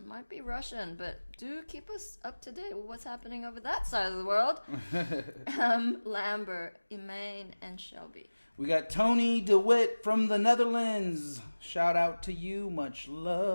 be Russian, but do keep us up to date with what's happening over that side of the world. Lambert, Emaine, and Shelby. We got Tony DeWitt from the Netherlands. Shout out to you. Much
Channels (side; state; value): both; inverted; correlation -1.00